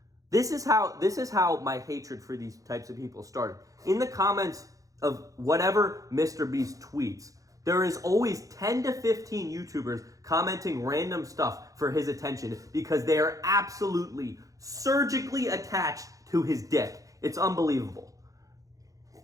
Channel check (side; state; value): left; late; 0.16 ms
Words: This is how my hatred for these types of people started. In the comments of whatever Mr. Beast tweets, there is always 10 to 15 YouTubers commenting random stuff for his attention because they are absolutely surgically attached to his dick. It's unbelievable.